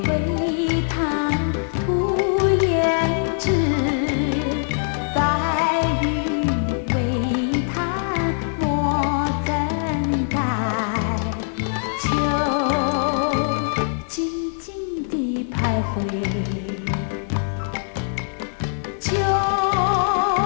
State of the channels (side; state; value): right; silent; 62 dB below the other